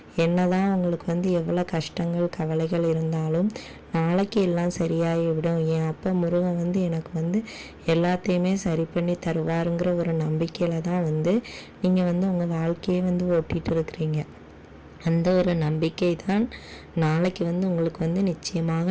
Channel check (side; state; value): both; identical; correlation 1.00